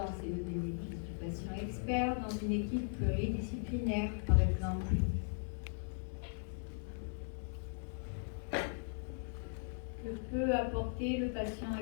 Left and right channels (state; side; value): silent; right; digital silence